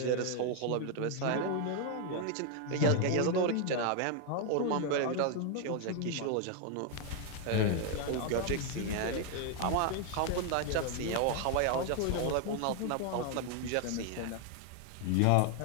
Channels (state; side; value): different; both; correlation 0.00